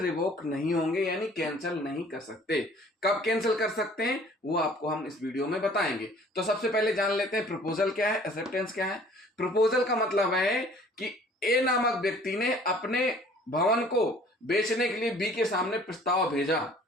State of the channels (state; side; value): normal; both; correlation 0.53